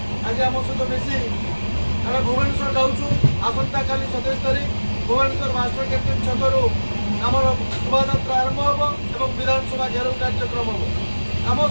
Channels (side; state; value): both; inverted; correlation -1.00